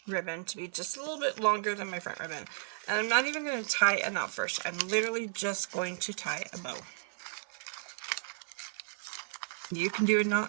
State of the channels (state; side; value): silent; left; 55 dB below the other